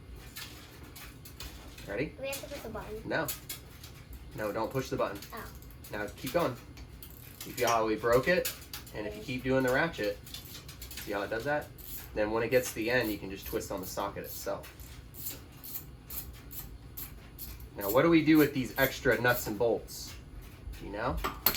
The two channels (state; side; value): identical; both; correlation 1.00